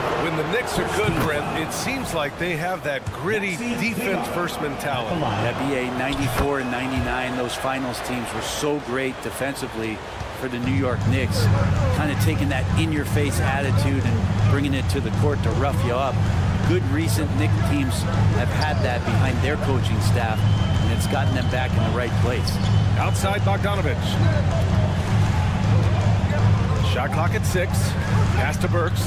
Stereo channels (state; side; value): identical; both; correlation 1.00